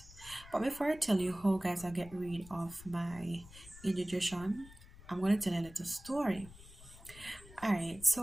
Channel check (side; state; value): left; noise; rumble, 19 dB below the sound